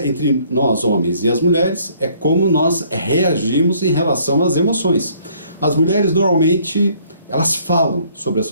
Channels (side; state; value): both; inverted; correlation -0.62